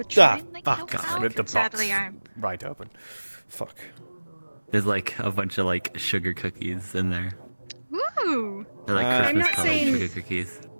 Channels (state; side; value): inverted; both; correlation -1.00